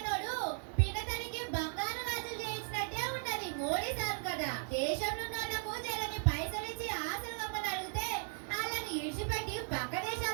పినతల్లికి బంగారు గాజులు చేయించినట్టే ఉన్నది మోడీ సార్ కదా. దేశంలో ఉన్నోళ్లకు జరని పైసలు ఇచ్చి ఆశలు గమ్మని అడిగితే వాళ్ళని ఇడిచిపెట్టి పక్క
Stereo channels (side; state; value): left; silent; 53 dB below the other